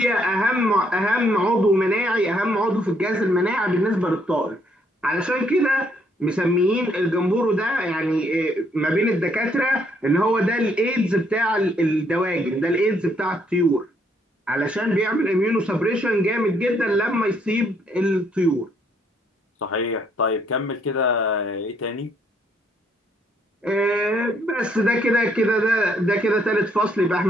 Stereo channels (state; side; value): normal; both; correlation 0.70